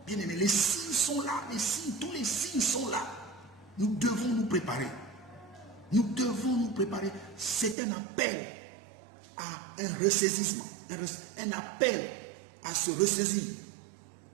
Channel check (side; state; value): left; drops out; at 7.8 s